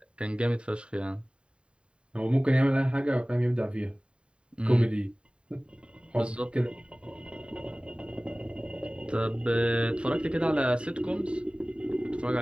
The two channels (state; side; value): late; left; 0.054 ms